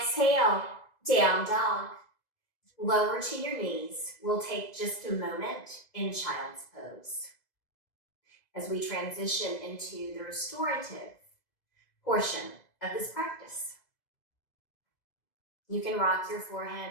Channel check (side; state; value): right; late; 2.0 ms